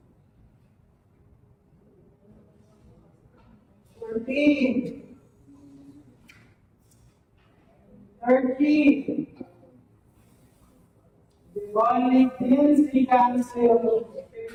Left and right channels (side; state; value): both; identical; correlation 1.00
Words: 14. 13. The only 10 seconds to